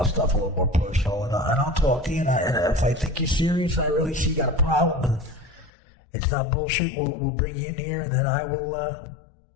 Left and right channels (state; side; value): drops out; right; at 5.7 s